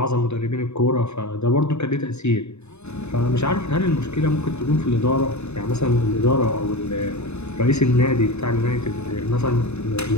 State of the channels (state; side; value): late; right; 0.81 ms